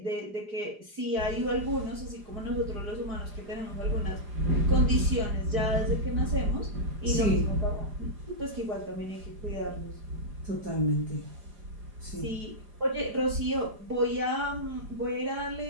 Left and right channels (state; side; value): late; left; 4.9 ms